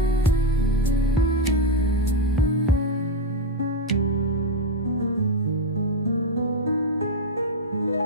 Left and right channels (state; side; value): normal; both; correlation 0.05